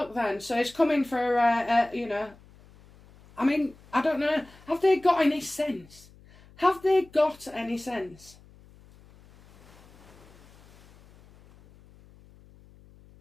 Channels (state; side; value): noise; left; hum, 25 dB below the sound